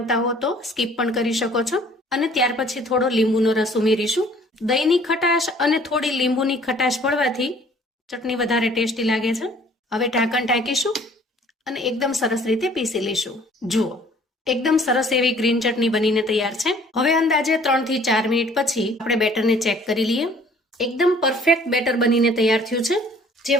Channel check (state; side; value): normal; both; correlation 0.56